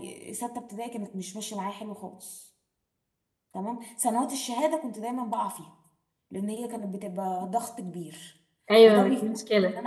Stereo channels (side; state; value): both; identical; correlation 1.00